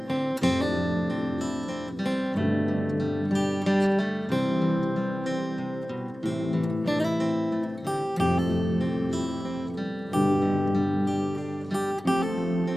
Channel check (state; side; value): normal; both; correlation 0.96